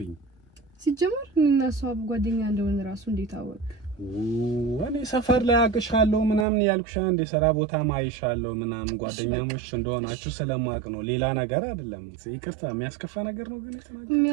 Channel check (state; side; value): drops out; left; at 6.5 s